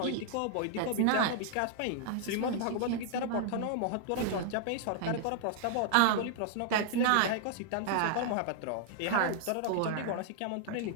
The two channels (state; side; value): different; both; correlation -0.01